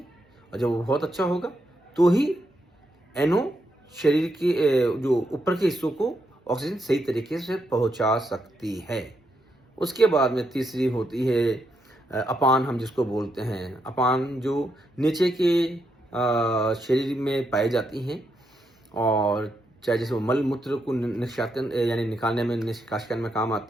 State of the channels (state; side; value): normal; both; correlation 0.81